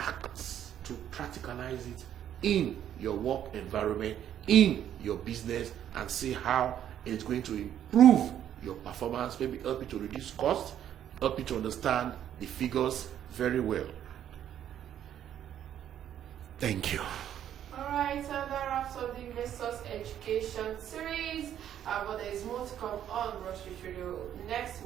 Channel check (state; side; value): quieter; left; 10.4 dB